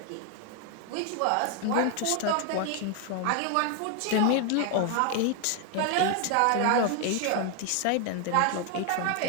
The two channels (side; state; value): both; different; correlation 0.01